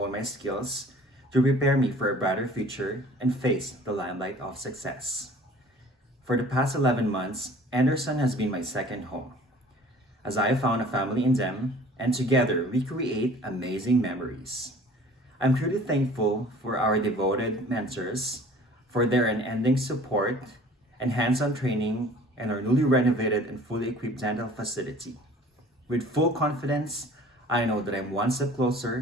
my skills, to prepare me for a brighter future and face the limelight of success. For the past 11 months, Anderson has been my second home, as I have found a family in them, and together we create amazing memories. I'm truly thankful for our devoted mentors, for their unending support and hands-on training in our newly renovated and fully equipped dental facility. With full confidence, I know that I'm one step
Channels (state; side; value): normal; both; correlation 0.48